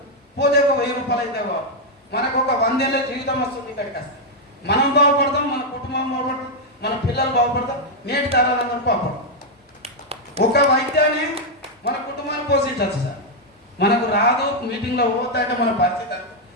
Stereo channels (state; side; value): normal; both; correlation -0.01